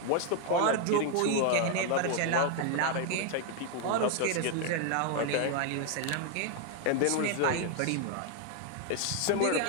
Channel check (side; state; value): both; different; correlation 0.01